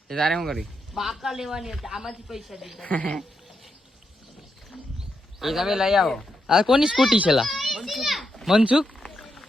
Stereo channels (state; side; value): normal; both; correlation 0.83